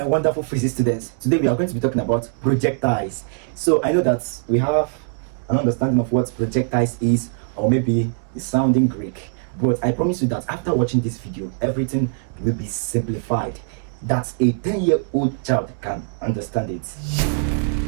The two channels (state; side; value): silent; left; 64 dB below the other